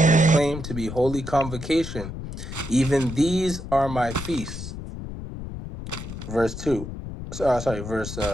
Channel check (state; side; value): noise; left; rumble, 9 dB below the sound